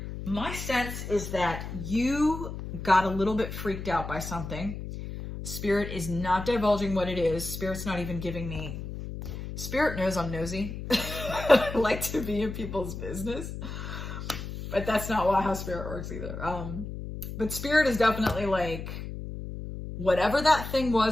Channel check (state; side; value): noise; left; hum, 8 dB below the sound